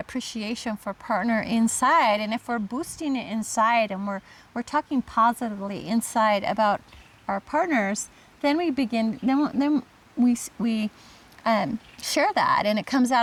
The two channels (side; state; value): both; identical; correlation 1.00